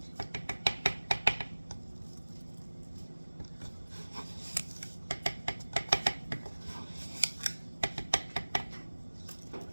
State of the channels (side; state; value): both; inverted; correlation -1.00